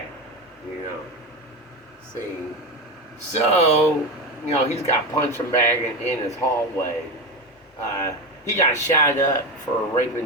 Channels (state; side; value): normal; both; correlation 0.19